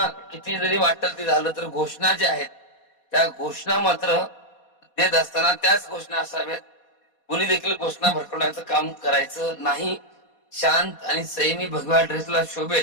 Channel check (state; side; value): late; right; 4.2 ms